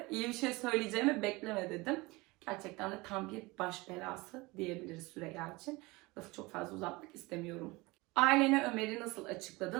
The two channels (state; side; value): quieter; left; 23.0 dB